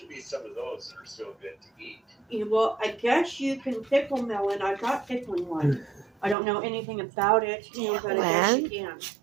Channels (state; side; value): drops out; left; at 6.4 s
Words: be some of those that are still good to eat. Well, I guess you can pickle melon. I've got pickling one. I don't know anything about it, but I guess you can.